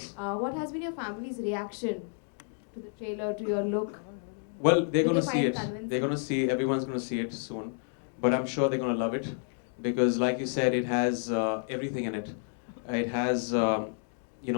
What has been your family's reaction to the trailer, to your look? Well, they're Did going they to see find it. convincing? They're going to see, everyone's going to see it soon. But I'm sure they're going to love it because, like you said, it has everything in it. It has, the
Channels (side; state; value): right; silent; 58 dB below the other